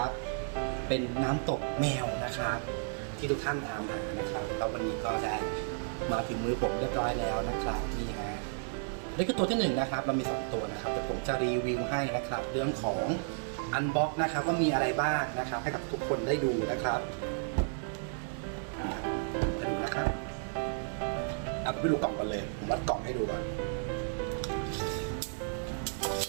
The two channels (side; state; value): left; silent; digital silence